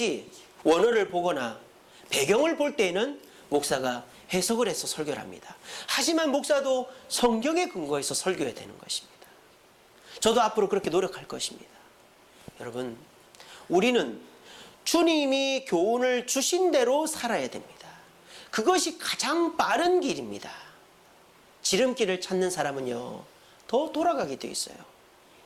원어를 보거나 배경을 볼 때에는 목사가 해석을 해서 설교를 합니다. 하지만 목사도 성경에 근거해서 설교해야 되는 것입니다. 저도 앞으로 그렇게 노력할 것입니다. 여러분, 우리는 주님이 교훈을 주신 대로 살아야 됩니다. 그것이 가장 빠른 길입니다. 지름길을 찾는 사람은요, 더 돌아가게 돼 있어요.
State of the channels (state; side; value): identical; both; correlation 1.00